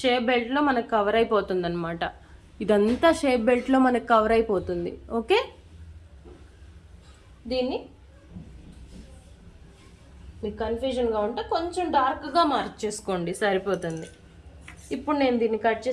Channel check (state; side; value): identical; both; correlation 1.00